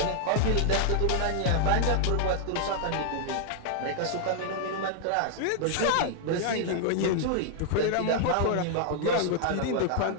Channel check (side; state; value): both; different; correlation 0.00